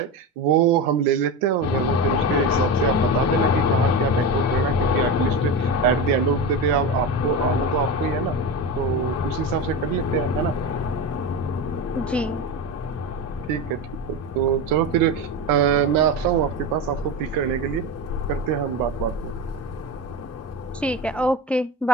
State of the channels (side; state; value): both; normal; correlation 0.22